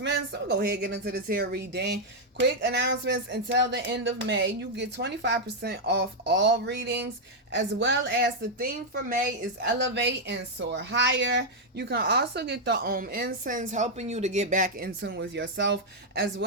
So we'll go ahead and get into this here reading. Quick announcements: until the end of May, you get 25% off all readings, as well as the theme for May is Elevate and Soar Higher. You can also get the incense, helping you to get back in tune with yourself, as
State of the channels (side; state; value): both; normal; correlation -0.01